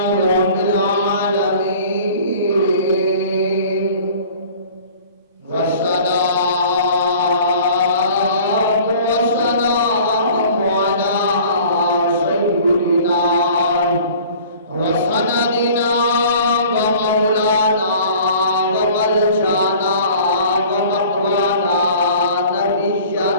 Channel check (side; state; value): both; inverted; correlation -0.47